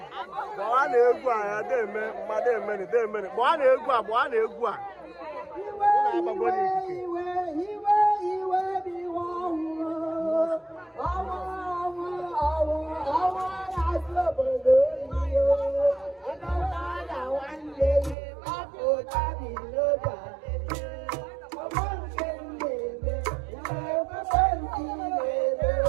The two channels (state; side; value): drops out; left; at 18.2 s